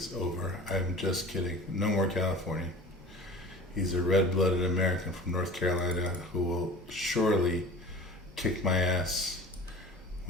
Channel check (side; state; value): both; normal; correlation 0.41